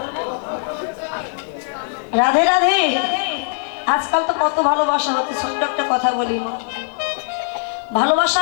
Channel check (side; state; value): right; silent; 66 dB below the other